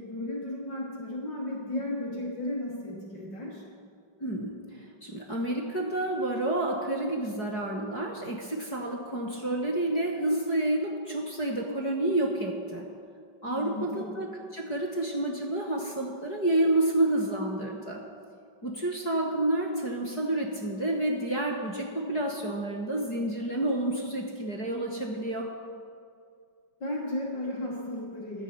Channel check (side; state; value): right; late; 4.7 ms